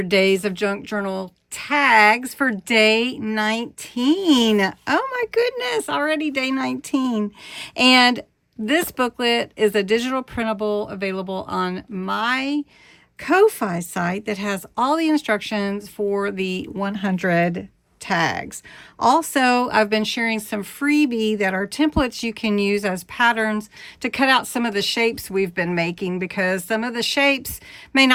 days of junk journal tags for day 19. Oh my goodness, already day 19. And this booklet is a digital printable available on my Ko-Fi site that has all the instructions for the 100 tags. Also, I've been sharing some freebie that are templates you can use as patterns to cut out some of the shapes we've been making, because some of the shapes may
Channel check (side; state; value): both; identical; correlation 1.00